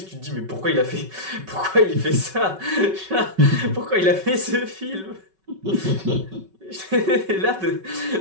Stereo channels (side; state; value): left; late; 5.3 ms